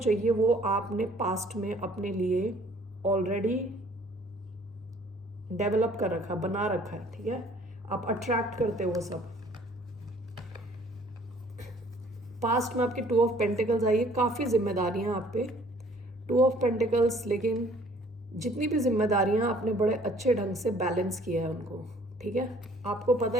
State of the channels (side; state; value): both; normal; correlation 0.57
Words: वो आपने पास्ट में अपने लिए ऑलरेडी डेवलप कर रखा, बना रखा है। ठीक है, आप अट्रैक्ट करते हो वो सब। पास्ट में आपके 2 ऑफ पेंटिकल्स आई है, काफ़ी जिम्मेदारियां आप पे। 2 ऑफ पेंटिकल्स, लेकिन जितनी भी जिम्मेदारियां आपने बड़े अच्छे ढंग से बैलेंस किया है उनको। ठीक है, आपको पता